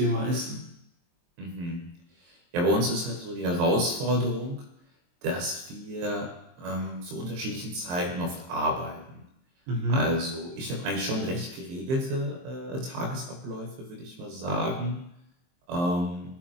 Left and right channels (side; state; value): left; late; 23 ms